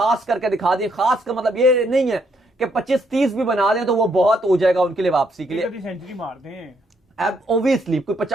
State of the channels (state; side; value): normal; both; correlation 0.73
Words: करके दिखा दें। खास का मतलब ये नहीं है कि 25-30 भी बना दें तो वो बहुत हो जाएगा उनके लिए वापसी के लिए, सेंचुरी मार दें ऑब्वियसली कोई